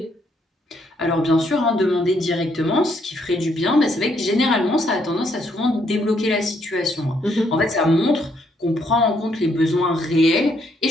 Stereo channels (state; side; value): normal; both; correlation 0.72